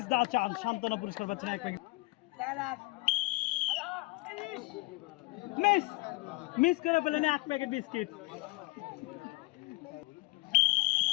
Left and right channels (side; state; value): right; quieter; 22.2 dB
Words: দা চান্স, সান্ত্বনা পুরস্কার পাচ্ছেন এক প্যাকেট। মিস করে পেলেন এক প্যাকেট বিস্কিট।